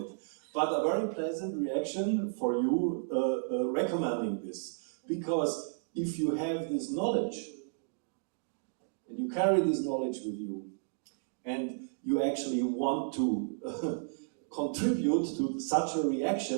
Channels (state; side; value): silent; left; digital silence